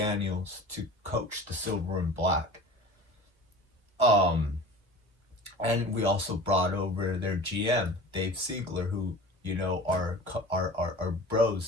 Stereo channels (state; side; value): late; left; 1.3 ms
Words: to coach the Silver and Black. And we also brought over their GM, Dave Siegler, who our